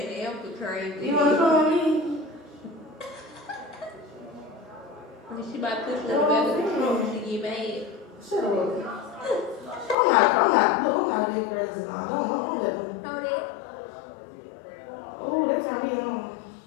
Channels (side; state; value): right; drops out; at 10.0 s